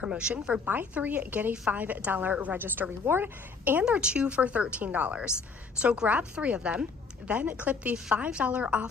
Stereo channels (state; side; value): quieter; right; 4.8 dB